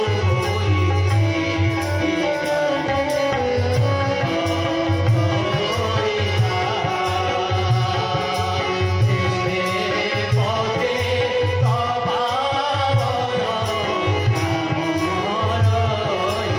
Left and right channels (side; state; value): both; identical; correlation 1.00